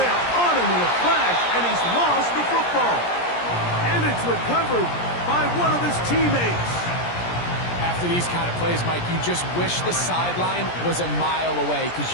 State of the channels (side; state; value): right; late; 17 ms